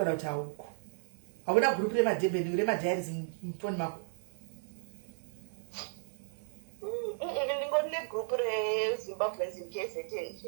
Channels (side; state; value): left; silent; digital silence